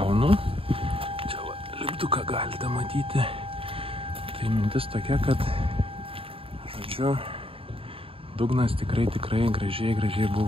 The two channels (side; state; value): left; late; 0.27 ms